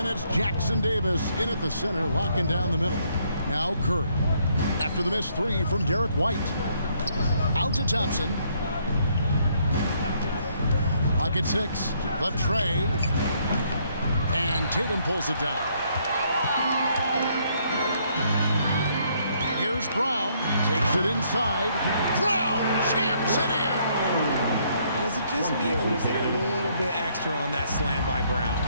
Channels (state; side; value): inverted; both; correlation -0.69